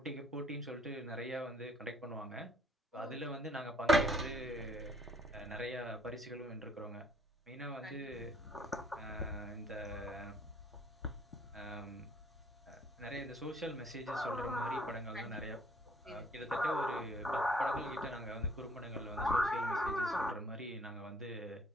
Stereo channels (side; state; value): both; normal; correlation 0.61